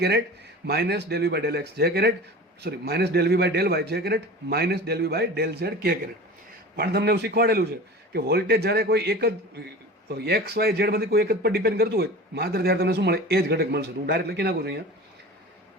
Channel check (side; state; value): both; normal; correlation 0.36